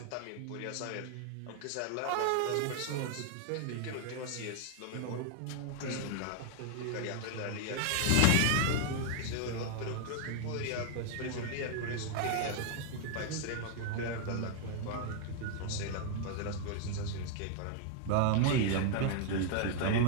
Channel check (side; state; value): both; different; correlation 0.00